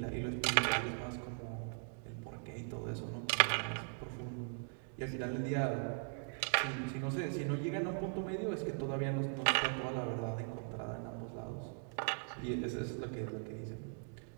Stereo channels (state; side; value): silent; left; 51 dB below the other